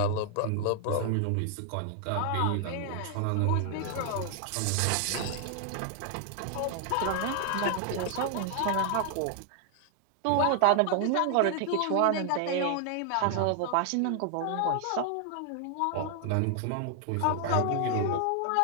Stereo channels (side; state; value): both; different; correlation 0.00